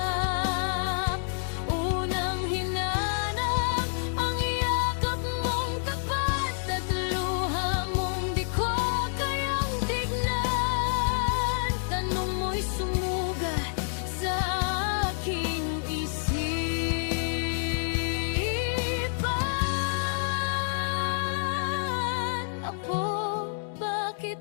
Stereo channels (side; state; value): right; silent; digital silence